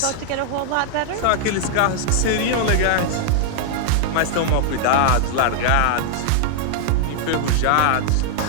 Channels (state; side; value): different; both; correlation -0.01